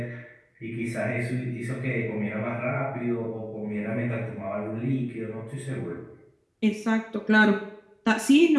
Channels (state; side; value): identical; both; correlation 1.00